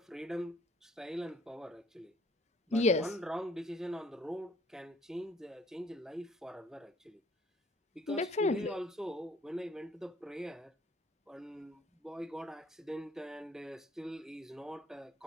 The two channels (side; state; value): both; normal; correlation 0.58